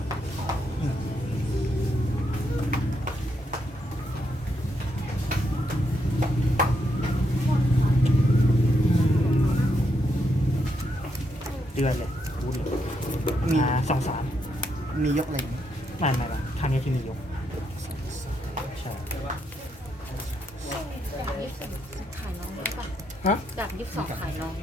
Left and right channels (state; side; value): normal; both; correlation 0.79